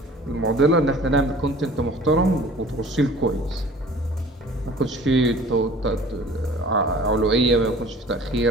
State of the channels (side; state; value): both; normal; correlation 0.47